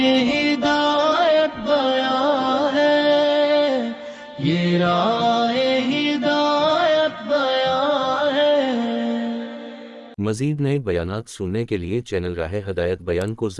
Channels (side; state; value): both; identical; correlation 1.00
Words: ہدایت بیان ہے، یہ راہ ہدایت بیان ہے۔ مزید نئے بیانات سننے کے لیے چینل راہ ہدایت بیان کو